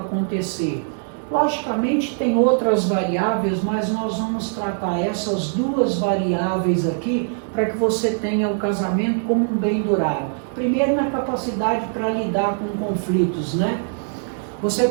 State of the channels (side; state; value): left; silent; digital silence